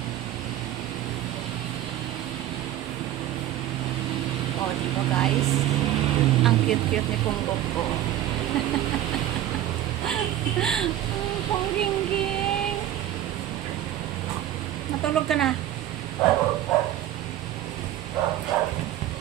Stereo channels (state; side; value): quieter; left; 12.7 dB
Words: Oh, diba guys? Ang cute-cute ni Punggok ko. Pungging-ging. Matulog ka na.